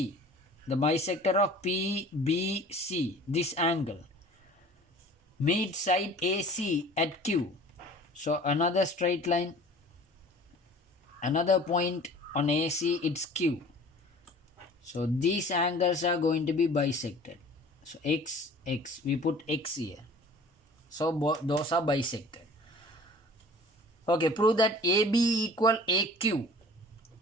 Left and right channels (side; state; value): both; normal; correlation 0.46